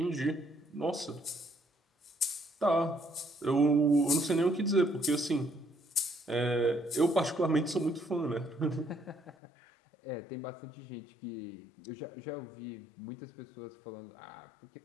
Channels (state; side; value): drops out; right; at 9.3 s